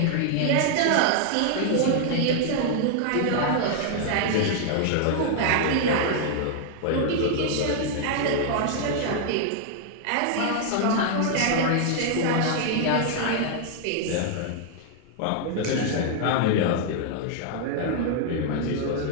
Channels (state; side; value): different; both; correlation 0.00